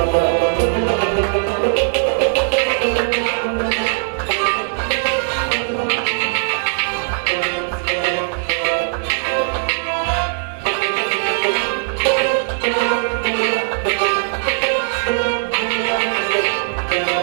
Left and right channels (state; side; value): silent; left; digital silence